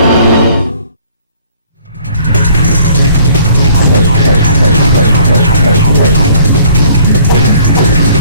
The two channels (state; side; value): inverted; both; correlation -0.57